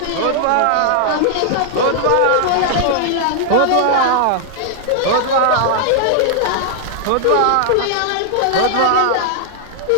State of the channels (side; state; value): both; different; correlation 0.00